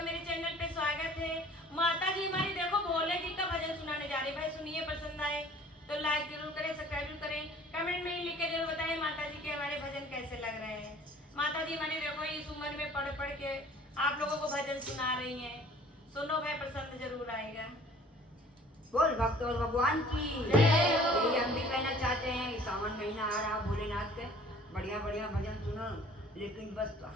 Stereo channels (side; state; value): both; normal; correlation 0.51